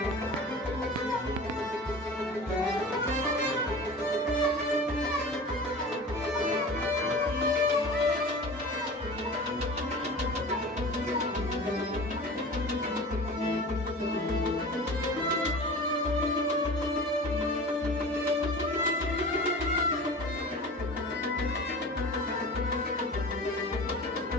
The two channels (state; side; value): normal; both; correlation 0.37